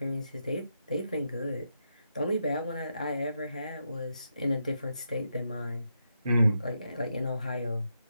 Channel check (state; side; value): inverted; both; correlation -0.83